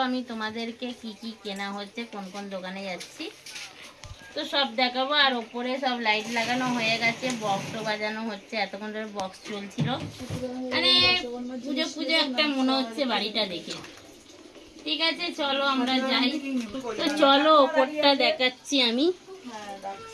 আমি তোমাদেরকে কি কি কেনা হচ্ছে, কোন কোন দোকানে যাচ্ছি তো সব দেখাবো। আর ওপরে সব লাইট লাগানো হয়ে গেছে, বক্সও বাজানো হচ্ছে, এতক্ষণ ধরে বক্স চলছিল। মানে পুজো পুজো একটা মনে হচ্ছে বাড়িটা দেখে। ঠিক আছে চলো আমরা যাই। তো চলো ওপরটা দেখাচ্ছি আমি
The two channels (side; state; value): both; identical; correlation 1.00